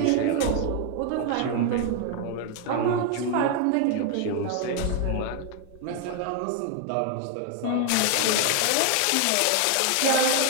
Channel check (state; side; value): different; both; correlation 0.00